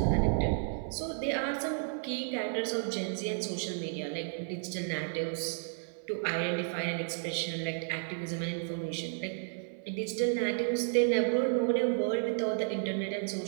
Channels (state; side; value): silent; left; 56 dB below the other